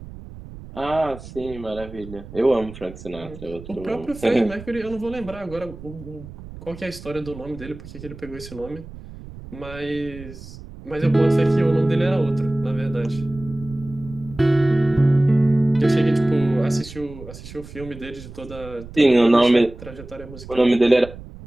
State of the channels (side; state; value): right; noise; rumble, 15 dB below the sound